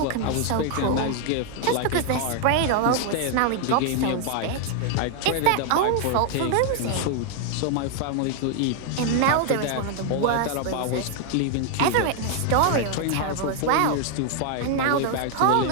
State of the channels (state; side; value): different; both; correlation 0.00